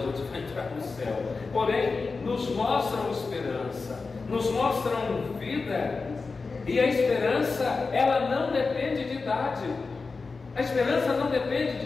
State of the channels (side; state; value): right; quieter; 4.3 dB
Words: gente vai entrar no céu. Porém, nos mostram esperança, nos mostram vida, e a esperança, ela não depende de idade. A esperança não depende